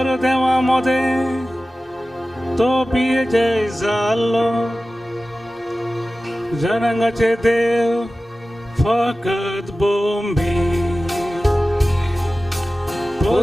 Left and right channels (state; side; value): normal; both; correlation 0.96